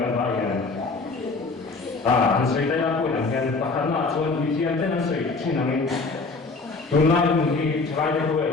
Anh suy thấy là cuối năm gần bắt đầu là chọn vị trí anh tên suy chỉ là mình hôm nay mình đi chơi cái buổi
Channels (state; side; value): quieter; right; 3.9 dB